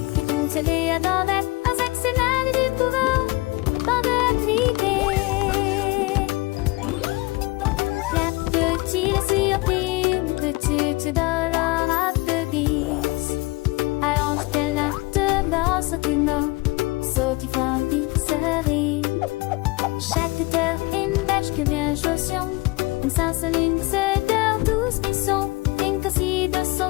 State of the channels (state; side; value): quieter; right; 23.4 dB